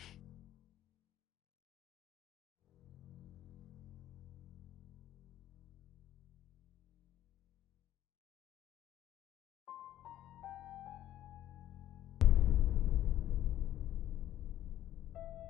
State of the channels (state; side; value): quieter; right; 12.5 dB